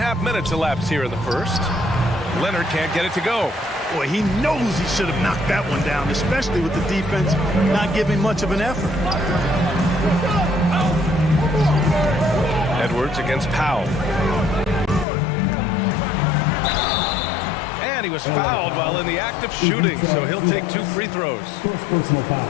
minutes elapsed here in the first. Leonard can't get it to go. Boy, he knows he should have knocked that one down, especially with the defense not giving much of an effort. Edwards against Powell. And he was fouled while in the act of shooting, so he'll take 2 free throws.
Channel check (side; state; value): right; drops out; at 15.1 s